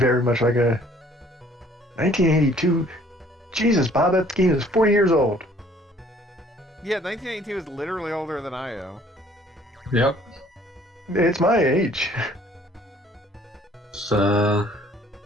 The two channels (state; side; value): normal; both; correlation 0.57